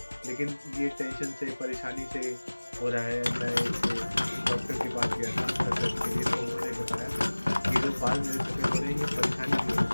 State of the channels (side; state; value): both; inverted; correlation -1.00